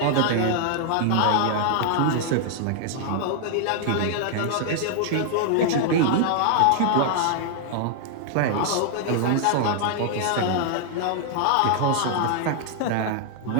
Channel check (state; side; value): different; both; correlation 0.00